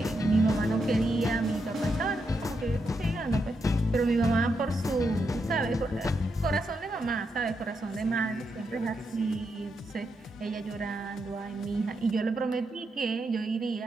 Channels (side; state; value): both; normal; correlation 0.82